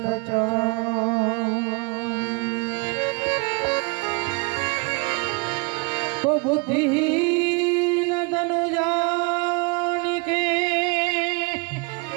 तो बुद्धिहीन तनु जानिके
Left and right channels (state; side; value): quieter; left; 29.8 dB